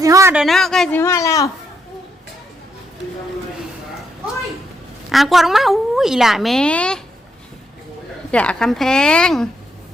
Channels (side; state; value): both; normal; correlation 0.78